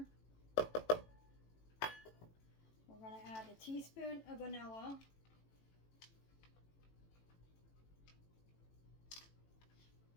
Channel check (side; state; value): right; late; 18 ms